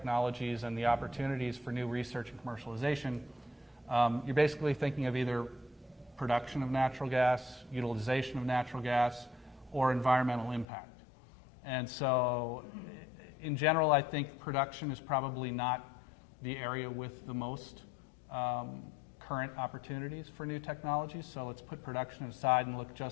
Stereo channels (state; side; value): drops out; right; at 10.7 s